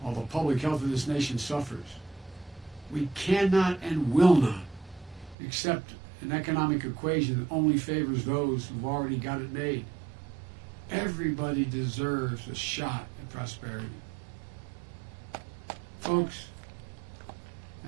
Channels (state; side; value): drops out; left; at 5.4 s